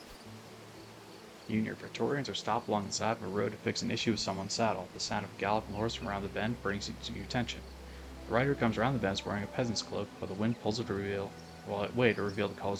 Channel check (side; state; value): both; identical; correlation 1.00